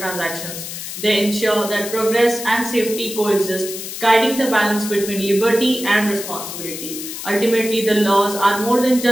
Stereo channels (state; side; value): noise; left; hiss, 8 dB below the sound